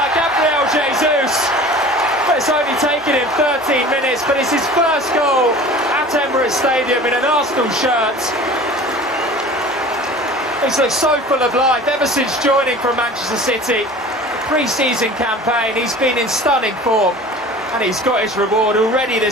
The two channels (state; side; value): normal; both; correlation 0.41